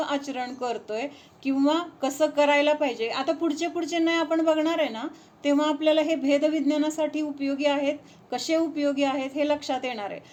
आचरण करतोय किंवा कसं करायला पाहिजे, आता पुढचे नाही आपण बघणार आहे ना, तेव्हा आपल्याला हे भेदविज्ञानासाठी उपयोगी आहेत, कसे उपयोगी आहेत हे लक्षात येणार आहे.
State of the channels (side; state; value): both; identical; correlation 1.00